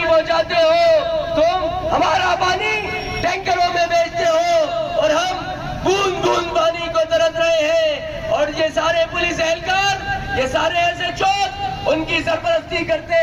پہنچاتے ہو, تم ہمارا پانی ٹینکروں میں بیچتے ہو اور ہم بوند بوند پانی کو ترس رہے ہیں. اور یہ سارے پولیس اہلکار, یہ سارے ایس ایچ او ان کی سرپرستی کرتے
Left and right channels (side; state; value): both; identical; correlation 1.00